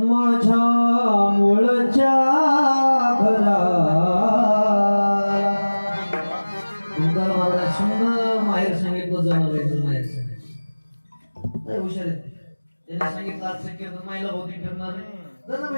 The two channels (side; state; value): both; inverted; correlation -1.00